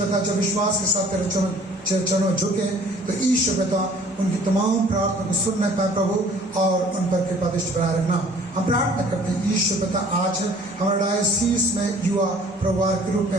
जब विश्वास के साथ तेरे चरणों झुके तो ईश्वर पिता उनकी तमाम प्रार्थना को सुनने पाए प्रभु, और उन पर कृपा दृष्टि बनाए रखना। हम प्रार्थना करते हैं ईश्वर पिता, आज हमारे डायोसीस में युवा प्रवाह के रूप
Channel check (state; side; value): normal; both; correlation 0.53